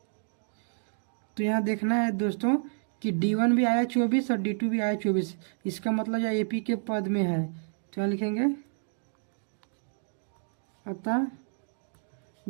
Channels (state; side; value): silent; left; digital silence